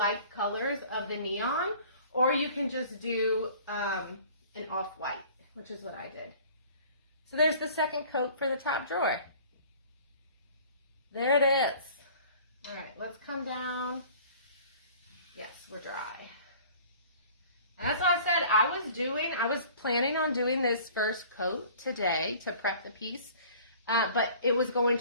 colors of the neon, or you can just do an off-white, which is what I did. So there's the second coat for the top drawer. There it is. All right, let's come down. Yes, we're dry. And that's what I said I was planning on doing this first coat today to prep the piece, but it was going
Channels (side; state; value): both; inverted; correlation -0.49